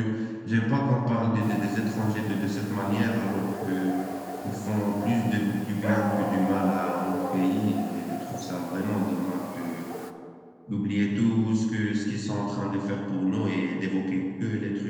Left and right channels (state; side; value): identical; both; correlation 1.00